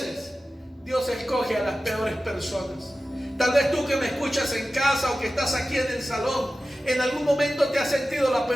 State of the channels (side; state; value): both; normal; correlation 0.95